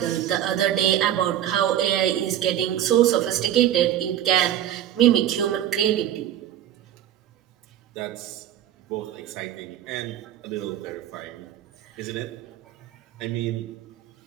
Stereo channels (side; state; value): left; quieter; 11.4 dB